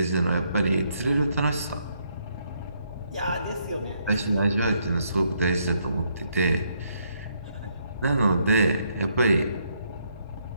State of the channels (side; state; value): both; inverted; correlation -0.73